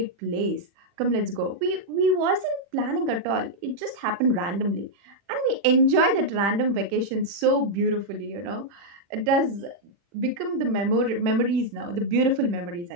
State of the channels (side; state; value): left; late; 40 ms